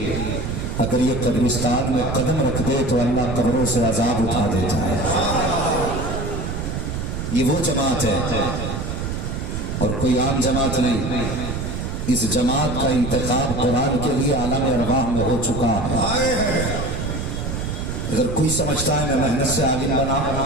اگر یہ قبرستان میں قدم رکھ دے تو اللہ قبروں سے عذاب اٹھا دیتا ہے. یہ وہ جماعت ہے اور کوئی عام جماعت نہیں. اس جماعت کا انتخاب قرآن کے لیے عالم ارواح میں ہو چکا ہے. اگر کوئی سمجھتا ہے میں محنت سے عالم بنا،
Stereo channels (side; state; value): right; noise; rumble, 4 dB below the sound